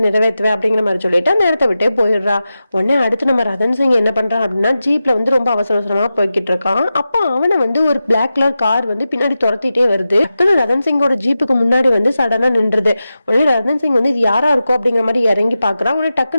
நிறைவேற்றுவேன் அப்படிங்கிற மாதிரி சொல்லிட்டு நேரத்தை விட்டே போயிடுறா. உடனே அடுத்து நம்ம ரதன் சிங் என்ன பண்றான் அப்படின்னா ஜீப்ல வந்து ரொம்ப அவசர அவசரமா போய்கிட்டு இருக்கான். அப்போ அவனை வந்து ஒரு பிளாக் கலர் கார் வந்து பின்னாடி துரத்திட்டே வருது. டக்குனு ரதன் சிங்கோட ஜீப்புக்கு முன்னாடி வந்து சடனா நின்றுது. உடனே ரதன் சிங் வந்து இது யாரா இருக்கும் அப்படிங்கிற மாதிரி இறங்கி பாக்குறான். உடனே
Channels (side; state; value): both; inverted; correlation -0.92